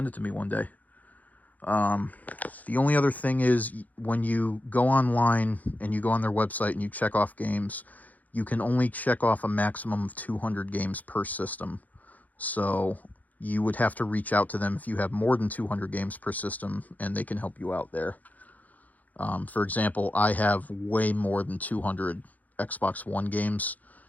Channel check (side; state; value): right; late; 0.079 ms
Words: it to me one day. The only other thing is, when you go online and you go on their website and you check off games, you can only check off a maximum of 200 games per system. So you would have to reach out to them if you have more than 200 games per system, and they can help you out there. For example, I have way more than 200 Xbox One games,